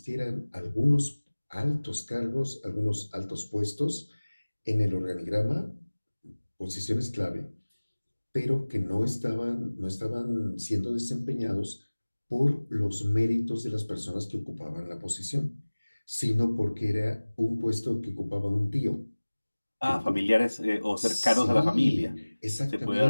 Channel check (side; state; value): both; inverted; correlation -1.00